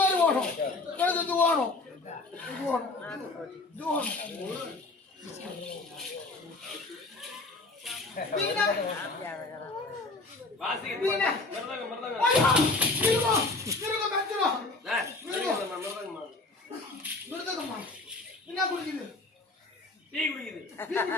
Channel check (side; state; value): right; quieter; 3.3 dB